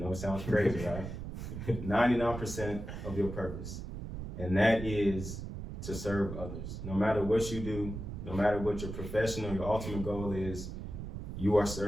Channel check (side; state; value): right; noise; rumble, 7 dB below the sound